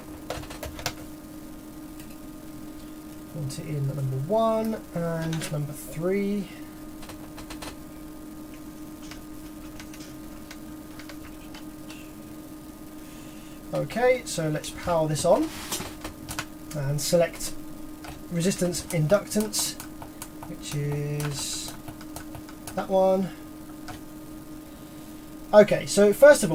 In number 1 and number 3. Okay, so let's power this on and select resistance inductance, which is that one. Okay, so first of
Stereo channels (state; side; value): identical; both; correlation 1.00